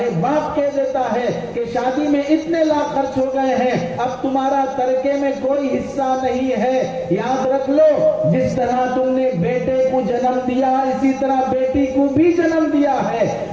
باپ کہہ دیتا ہے کہ شادی میں اتنے لاکھ خرچ ہو گئے ہیں، اب تمہارا ترکے میں کوئی حصہ نہیں ہے۔ یاد رکھ لو، جس طرح تم نے بیٹے کو جنم دیا اسی طرح بیٹی کو بھی جنم دیا ہے۔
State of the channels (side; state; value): both; identical; correlation 1.00